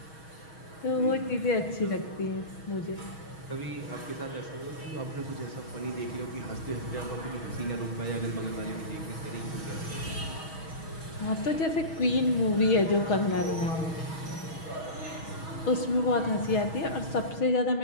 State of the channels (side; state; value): right; late; 6.3 ms